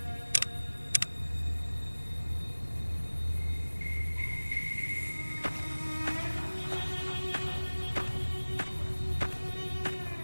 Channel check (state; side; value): inverted; both; correlation -1.00